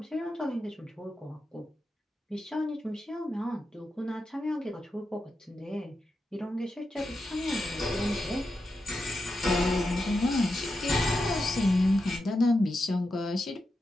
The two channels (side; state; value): both; normal; correlation 0.88